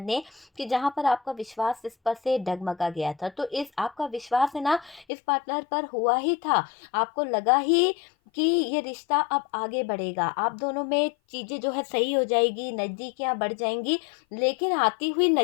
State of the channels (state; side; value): drops out; right; at 5.1 s